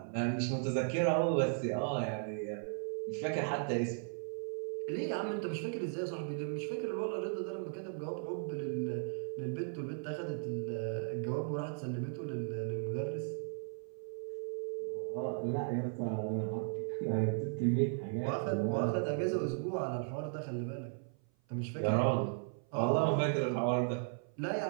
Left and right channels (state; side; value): silent; left; 54 dB below the other